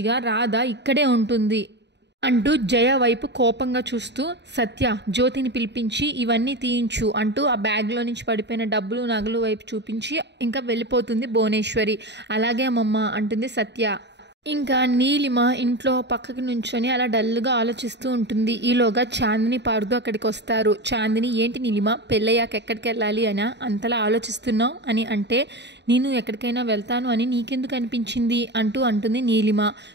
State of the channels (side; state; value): left; late; 0.50 ms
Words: రాధ ఇక్కడే ఉంటుంది. అంటూ జయ వైపు కోపంగా చూస్తూ సత్య జ్యోతిని పిలిపించి ఇవన్నీ తీయించు అంటూ ఆ బ్యాగ్లో నుంచి పడిపోయిన డబ్బులు నగలు వైపు చూపించి ఇంకా వెళ్ళిపోతుంది భువనేశ్వరి. అలాగే అమ్మమ్మ అంటుంది సత్య. ఇంకా నీలిమ ఇంట్లో పక్కకి నుంచొని అలా డల్గా ఆలోచిస్తూ ఉంటుంది. ఈలోగా చాందిని పార్దు అక్కడికి వస్తారు. చాందిని ఏంటి నీలిమ పెళ్ళయ్యాక ఎక్కడికి వెళ్ళాలి అని అంతలా ఆలోచిస్తున్నావు అని అంటే నేను ఎక్కడికైనా వెళ్తాను అని నీకెందుకు అనిపించింది అంటుంది నీలిమ